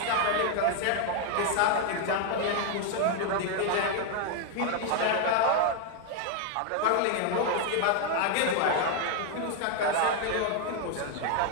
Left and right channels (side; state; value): both; different; correlation 0.00